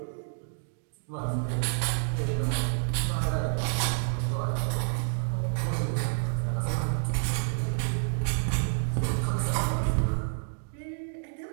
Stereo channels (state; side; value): silent; left; digital silence